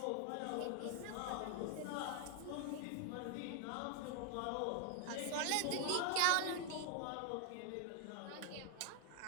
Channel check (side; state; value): both; different; correlation 0.00